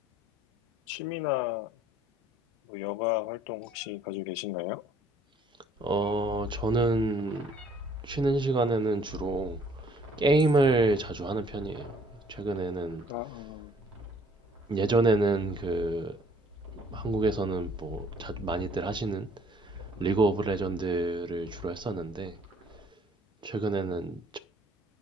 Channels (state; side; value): normal; both; correlation 0.59